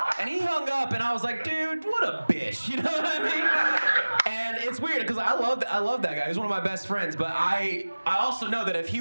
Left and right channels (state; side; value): inverted; both; correlation -1.00